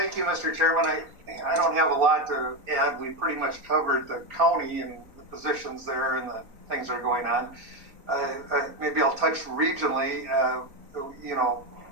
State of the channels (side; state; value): left; late; 4.1 ms